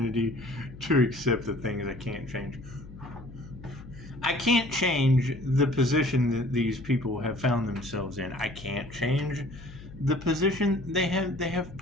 to accept the things I can't change. I can't change the position that these people have found themselves in. I can't change the position they have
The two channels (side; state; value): left; noise; hum, 16 dB below the sound